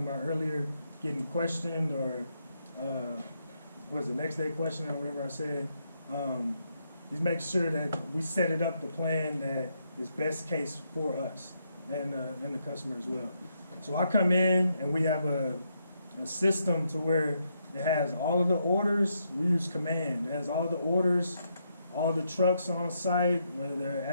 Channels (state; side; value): inverted; both; correlation -0.78